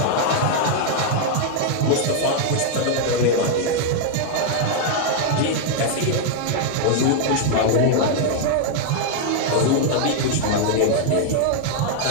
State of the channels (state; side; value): different; both; correlation 0.00